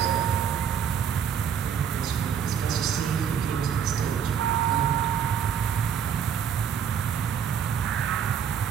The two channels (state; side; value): quieter; left; 8.0 dB